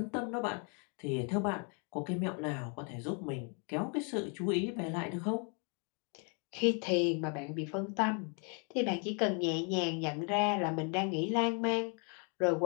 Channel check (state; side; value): quieter; right; 37.7 dB